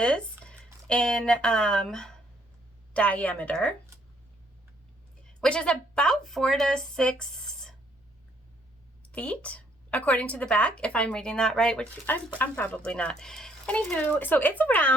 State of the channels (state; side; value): normal; both; correlation 0.67